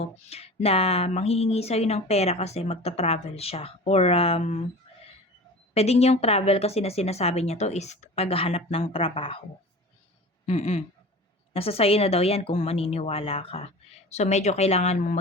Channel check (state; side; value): normal; both; correlation 0.37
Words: na manghihingi sa'yo ng pera kasi magta-travel siya. Or, pwedeng yung travel kasi na sinasabi niya to is paghahanap ng trabaho. Nasa sa'yo na daw yan kung maniniwala ka. So, medyo kailangan